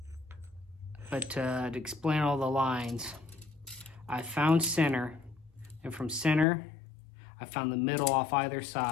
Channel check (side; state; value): right; drops out; at 6.5 s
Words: but to explain all the lines, I found center, and from center I found the middle off either